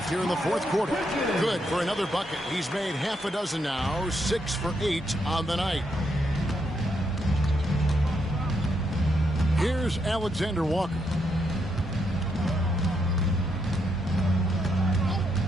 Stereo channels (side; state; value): both; normal; correlation 0.78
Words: here in the fourth quarter. Good for another bucket. He's made half a dozen now. 6 for 8 on the night. Here's Alexander Walker.